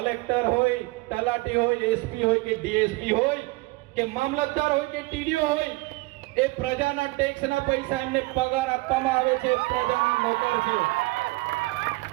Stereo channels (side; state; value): left; quieter; 23.3 dB